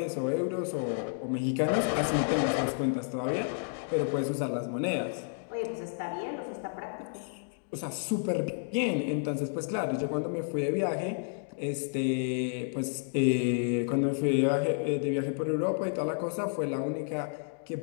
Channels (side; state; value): right; silent; digital silence